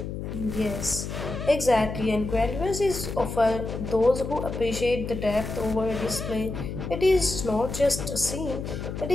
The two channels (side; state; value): left; noise; hum, 6 dB below the sound